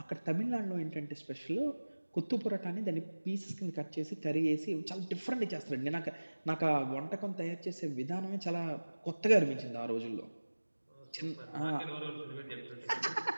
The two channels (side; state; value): both; inverted; correlation -1.00